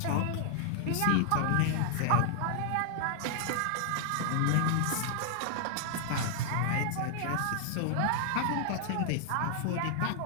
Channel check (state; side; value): different; both; correlation 0.00